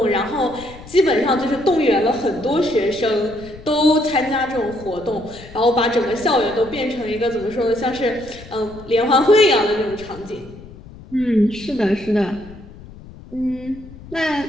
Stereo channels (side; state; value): left; noise; rumble, 18 dB below the sound